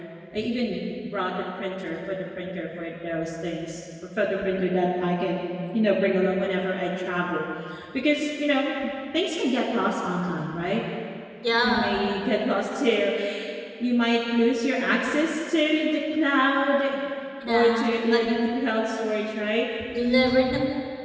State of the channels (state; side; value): identical; both; correlation 1.00